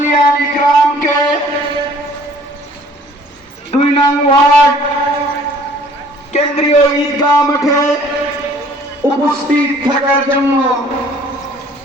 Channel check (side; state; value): both; normal; correlation 0.55